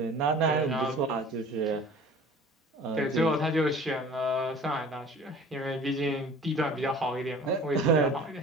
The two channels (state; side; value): normal; both; correlation 0.45